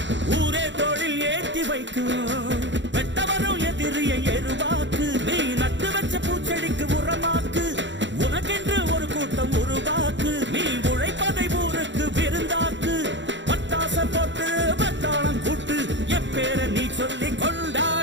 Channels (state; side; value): late; left; 0.53 ms